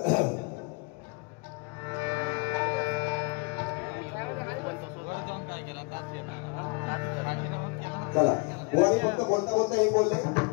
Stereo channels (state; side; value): quieter; right; 30.9 dB